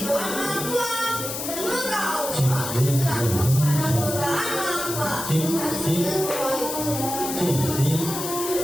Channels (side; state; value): left; noise; hiss, 5 dB below the sound